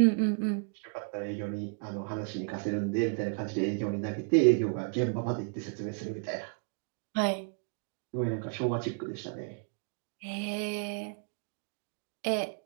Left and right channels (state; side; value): quieter; left; 39.9 dB